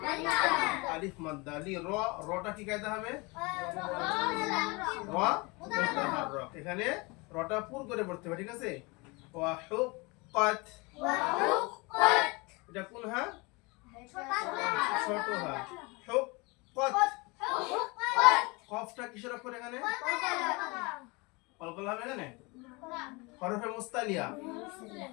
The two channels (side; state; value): right; quieter; 26.8 dB